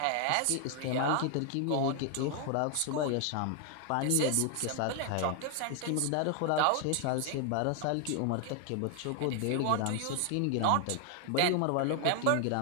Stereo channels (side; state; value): both; different; correlation 0.00